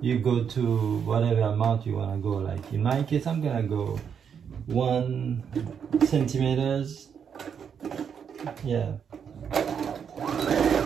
you go to whatever amount you want to go. Like in my case, I'm gonna go 1 centimeters. Yeah,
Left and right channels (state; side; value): quieter; left; 7.4 dB